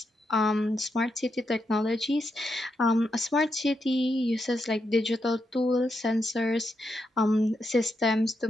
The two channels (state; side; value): normal; both; correlation 0.83